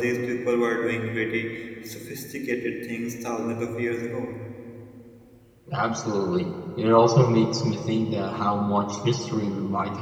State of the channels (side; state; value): both; identical; correlation 1.00